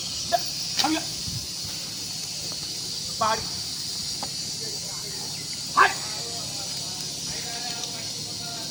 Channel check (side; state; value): both; identical; correlation 1.00